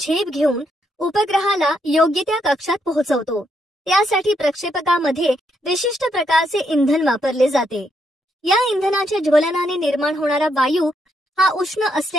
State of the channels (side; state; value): both; normal; correlation 0.77